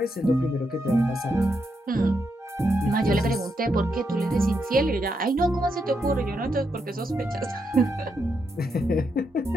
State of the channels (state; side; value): normal; both; correlation 0.81